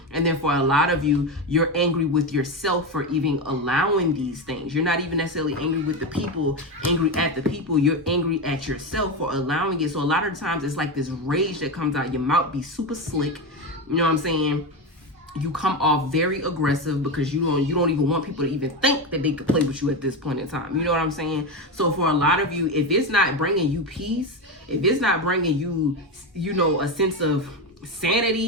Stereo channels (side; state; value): both; normal; correlation 0.15